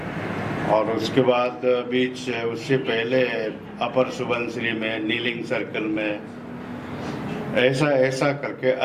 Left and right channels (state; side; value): identical; both; correlation 1.00